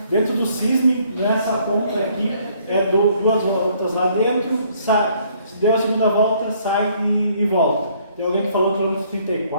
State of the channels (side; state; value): both; inverted; correlation -0.64